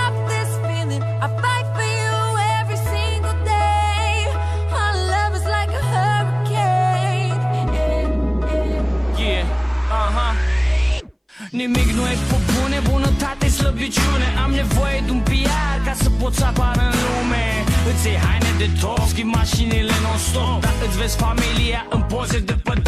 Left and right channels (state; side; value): identical; both; correlation 1.00